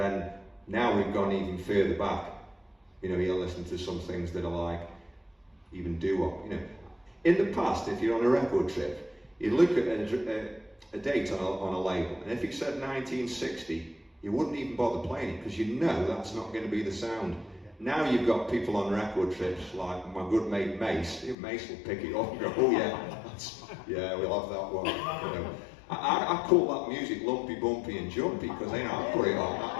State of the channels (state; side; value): drops out; right; at 21.4 s